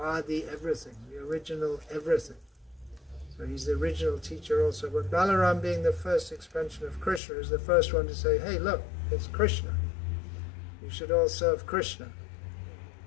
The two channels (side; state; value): right; drops out; at 7.2 s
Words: everything, the original everything. So he's the original teacher also. But Balaram, being the first expansion of Krishna, is the first one to say, hey, look, it's Krishna. You should all serve Krishna.